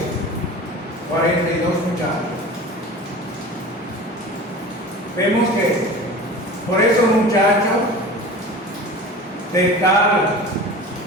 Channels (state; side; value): normal; both; correlation 0.36